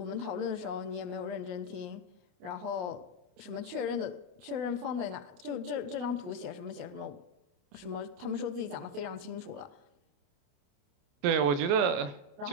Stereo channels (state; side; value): late; left; 28 ms